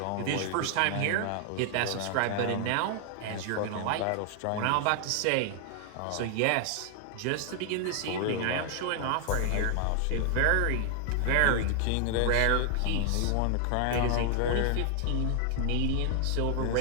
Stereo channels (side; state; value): both; different; correlation 0.00